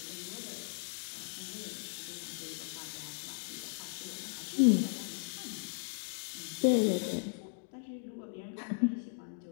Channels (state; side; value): silent; right; 53 dB below the other